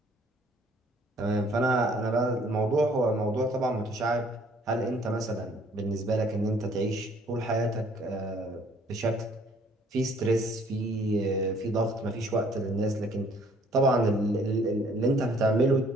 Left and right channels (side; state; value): both; normal; correlation 0.60